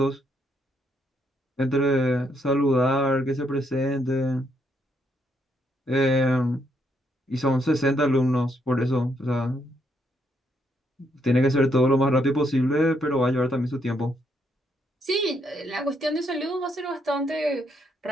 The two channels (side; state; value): both; normal; correlation 0.75